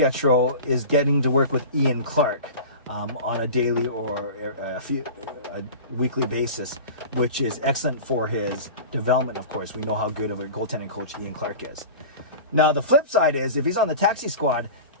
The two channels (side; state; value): both; inverted; correlation -0.34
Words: is getting to work with Ian Clark on a daily or a weekly basis, which is excellent for his development, of course. We know how good of a goaltending coach Ian Clark is. Now, the flip side is if he's on the taxi squad,